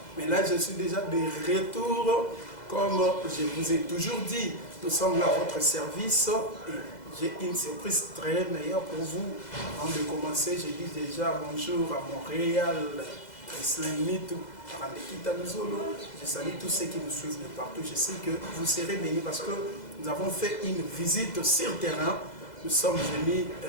mais là je suis déjà de retour. Comme je vous ai toujours dit, nous sommes là à votre service et j'ai une surprise très meilleure pour vous. Avant de commencer, je dis déjà bonjour à Montréal, Islamitou, à Randekita Muzolo. Je salue tous ceux qui nous suivent de partout. Je sais que vous serez bénis parce que nous avons fait une visite sur terrain. Nous sommes venus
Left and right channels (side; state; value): right; late; 2.0 ms